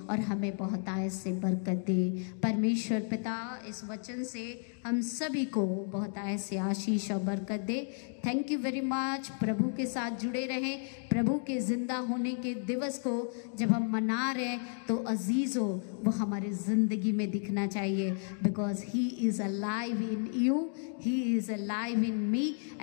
और हमें बहुतायत से बरकत दे। परमेश्वर पिता इस वचन से हम सभी को बहुतायत से आशीष और बरकत दे। Thank you very much. प्रभु के साथ जुड़े रहें। प्रभु के जिंदा होने के दिवस को जब हम मना रहे हैं तो अजीज़ों वो हमारे ज़िंदगी में दिखना चाहिए, because he is alive in you, he is alive in me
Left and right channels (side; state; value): right; silent; 56 dB below the other